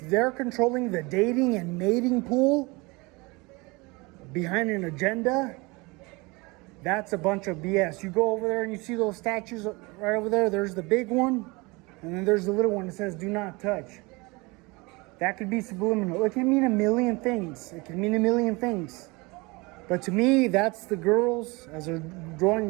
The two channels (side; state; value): left; quieter; 25.5 dB